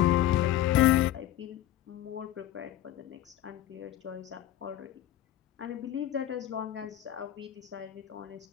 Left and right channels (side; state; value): right; quieter; 12.9 dB